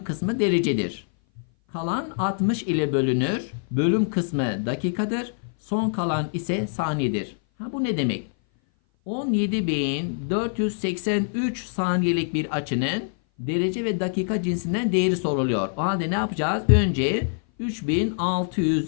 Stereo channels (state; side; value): silent; right; 58 dB below the other